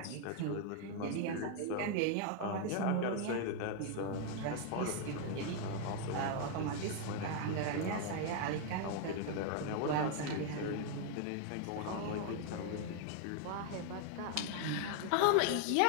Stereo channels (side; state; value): both; different; correlation 0.00